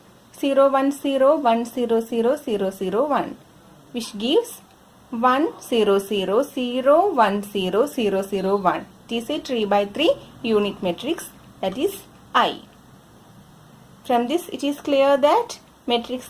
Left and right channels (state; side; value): identical; both; correlation 1.00